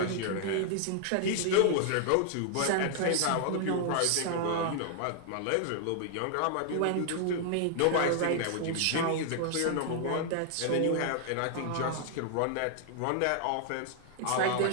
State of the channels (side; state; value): both; different; correlation 0.00